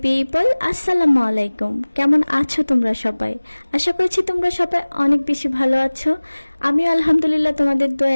people, আসসালামু আলাইকুম। কেমন আছো তোমরা সবাই? আশা করছি তোমরা সবাই অনেক বেশি ভালো আছো। আমিও আলহামদুলিল্লাহ তোমাদের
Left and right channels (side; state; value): both; inverted; correlation -1.00